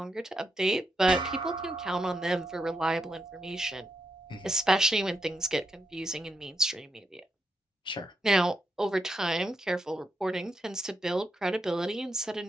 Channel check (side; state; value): both; normal; correlation 0.83